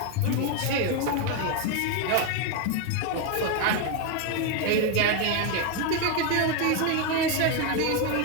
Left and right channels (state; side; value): different; both; correlation 0.01